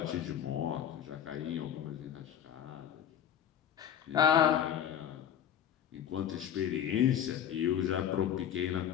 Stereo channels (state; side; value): quieter; right; 9.7 dB